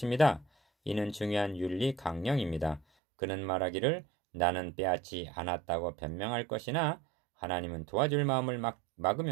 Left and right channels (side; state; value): left; drops out; at 2.9 s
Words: 이는 중요한 윤리 강령입니다. 그는 말하기를 나는 빼앗지 않았다고 변명할 것이나 하나님은 도와줄 마음을